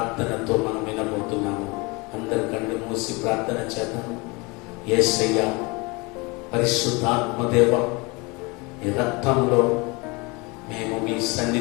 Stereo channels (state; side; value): quieter; right; 26.8 dB